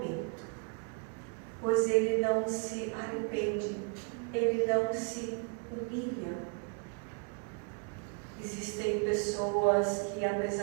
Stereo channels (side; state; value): left; quieter; 36.9 dB